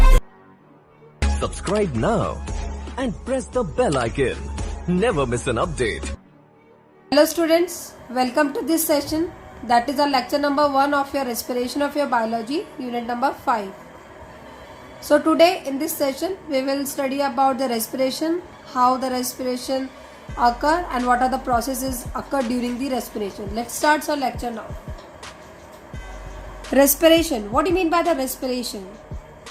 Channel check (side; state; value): both; identical; correlation 1.00